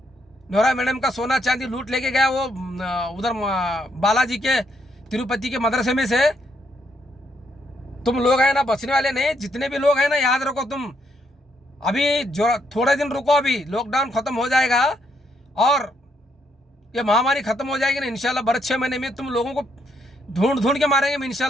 नोरा मैडम का सोना चांदी लूट लेके गया वो उधर बालाजी के तिरुपति के मदरसे में से। तुम लोग है ना बचने वाले नहीं, जितने भी लोग हैं ना, याद रखो। तुम अभी जो थोड़े दिन रुको, अभी लॉकडाउन खत्म हो जाएगा और ये महामारी खत्म हो जाएगी ना इंशाल्लाह। बड़े 6 महीने में तुम लोगों को ढूंढ के मारेंगे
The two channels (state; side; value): normal; both; correlation 0.75